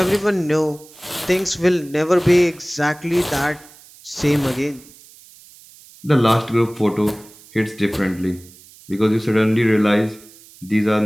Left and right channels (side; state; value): right; noise; hiss, 23 dB below the sound